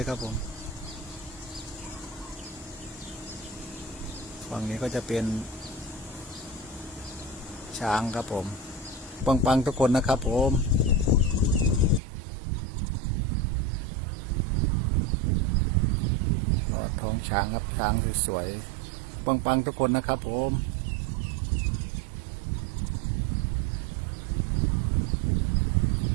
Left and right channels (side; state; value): left; drops out; at 12.0 s